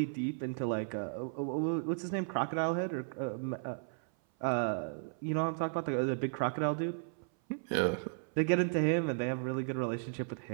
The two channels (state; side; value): silent; left; 55 dB below the other